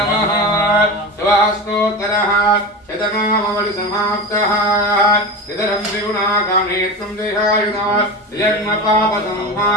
शिवास्तोत्रः शतनामवलि समाप्तः इदरं त्रिगुणाकामेत्वं देहायुधा जन्म पाप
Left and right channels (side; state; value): both; normal; correlation 0.26